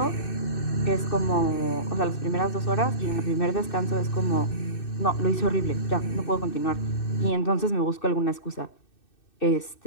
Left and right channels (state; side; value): late; right; 2.6 ms